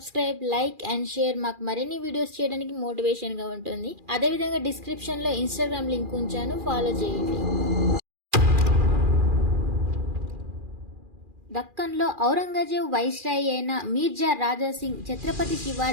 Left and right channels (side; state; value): left; late; 2.4 ms